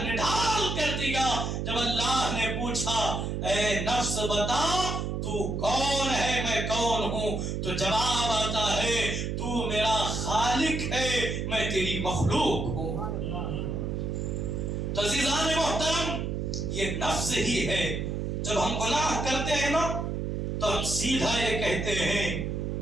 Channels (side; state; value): right; noise; hum, 2 dB below the sound